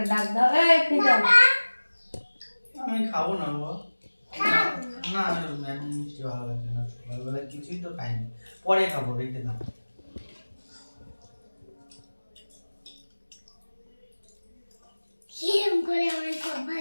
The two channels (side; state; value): both; inverted; correlation -1.00